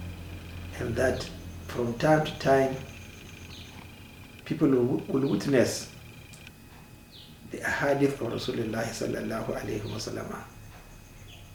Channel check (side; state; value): both; identical; correlation 1.00